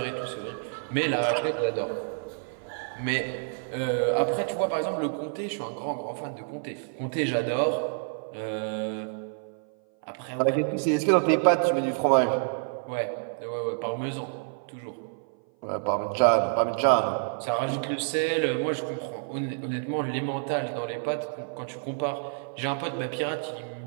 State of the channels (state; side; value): silent; left; 57 dB below the other